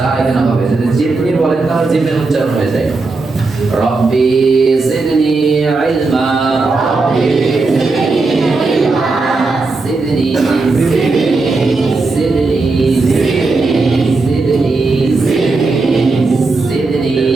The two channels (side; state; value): left; quieter; 3.7 dB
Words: এখানে হবে। যদি জিদনি বলেন তাহলে জিমের উচ্চারণ হয়ে যায়। রব্বি জিদনি ইলমা, জিদনি জিদনি জিদনি জিদনি